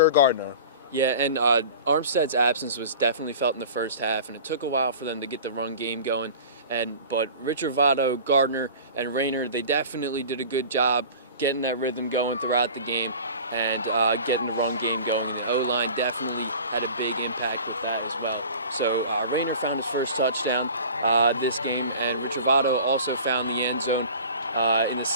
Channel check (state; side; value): inverted; both; correlation -0.39